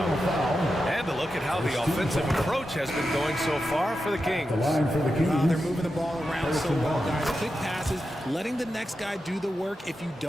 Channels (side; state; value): both; normal; correlation 0.89